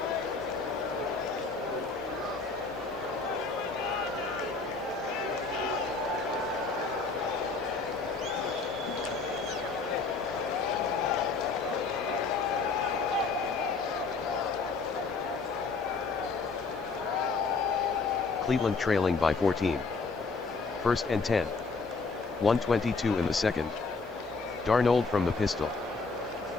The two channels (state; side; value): quieter; right; 4.3 dB